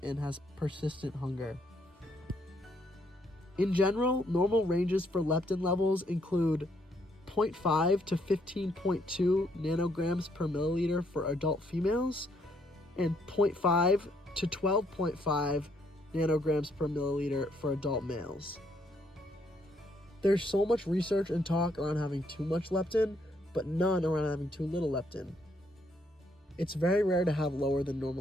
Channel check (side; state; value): both; normal; correlation 0.71